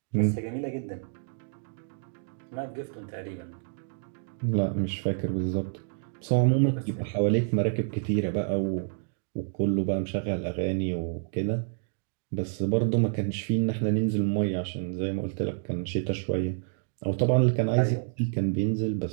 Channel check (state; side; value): silent; left; digital silence